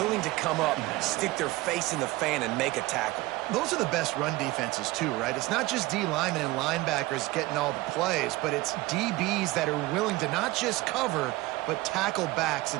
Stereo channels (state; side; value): quieter; left; 19.9 dB